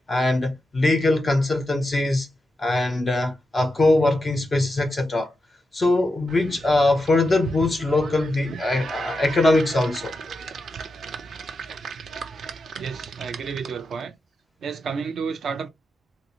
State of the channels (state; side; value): normal; both; correlation 0.88